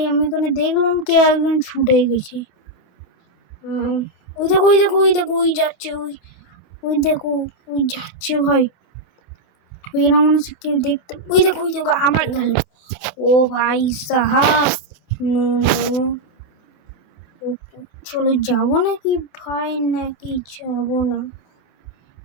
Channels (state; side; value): late; right; 28 ms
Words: আমি ওখানে দেখলাম কে একজন ছুটে গেছে। ওই দেখো ওই যাচ্ছে, ওই দেখো ওই যাচ্ছে ভাই। এরা মনে হচ্ছে কেউ দেখতে। ওই দেখো আমার গেল। ও ভাই সাহাব, চলো যাবো নাকি ভাই, নাকি যাবো না?